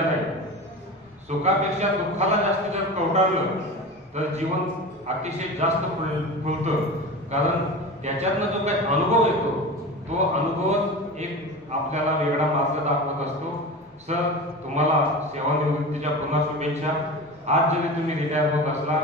नाही. सुखापेक्षा दुःखाला जास्त जर कवटाळलं तर जीवन अतिशय जास्त फुलतं, कारण त्याच्यातनं जो काही अनुभव येतो तो अनुभवच एक आपल्याला वेगळा मार्ग दाखवत असतो. सर, तुम्हाला सेवानिवृत्तीच्या पुन्हा शुभेच्छा. आज जरी तुम्ही रिटायर होत असला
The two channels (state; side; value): normal; both; correlation 0.30